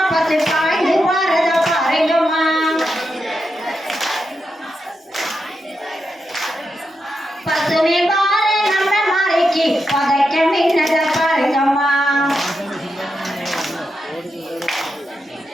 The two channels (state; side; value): normal; both; correlation 0.86